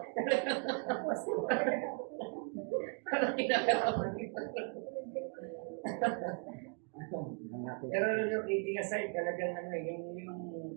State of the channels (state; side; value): quieter; left; 38.2 dB